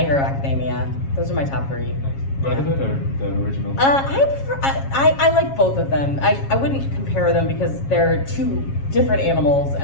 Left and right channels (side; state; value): right; late; 7.3 ms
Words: Hero Academia. Those are my top 3. Brotherhood or the original? I like both of them. I wouldn't compare them because they're 2 different animals, and